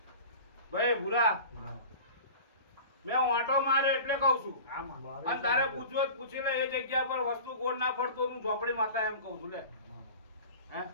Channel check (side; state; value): both; inverted; correlation -0.37